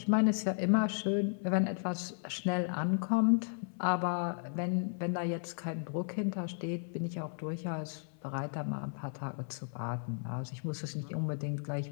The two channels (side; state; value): right; silent; 55 dB below the other